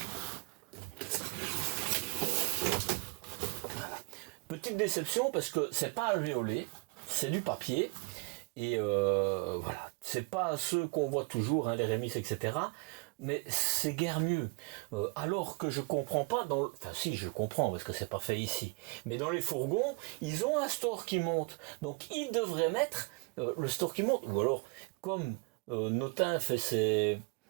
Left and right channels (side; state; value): left; quieter; 32.7 dB